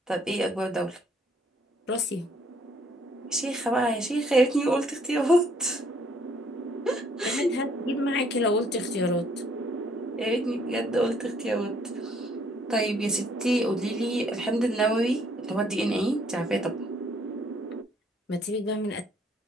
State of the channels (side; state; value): both; normal; correlation 0.64